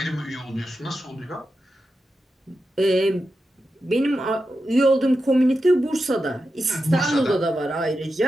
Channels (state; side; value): normal; both; correlation 0.90